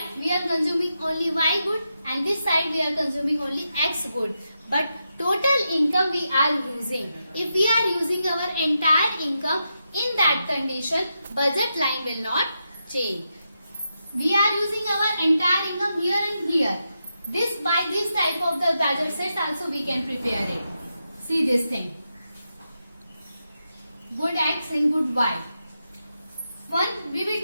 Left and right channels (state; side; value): inverted; both; correlation -0.86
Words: we are consuming only Y good and this side we are consuming only X good. But total income we are using. If we are using our entire income, in that condition, budget line will not change. We are using our entire income here and here. By this type of the budget sets also we can prepare it. See this thing. Good X and good Y. We will